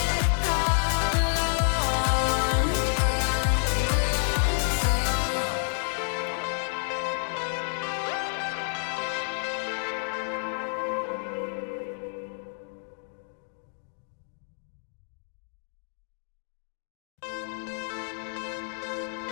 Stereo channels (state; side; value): silent; right; 59 dB below the other